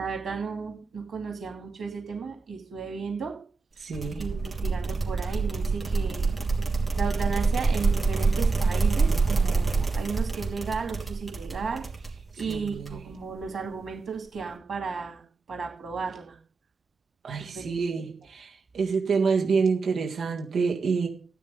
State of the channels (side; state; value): left; quieter; 4.2 dB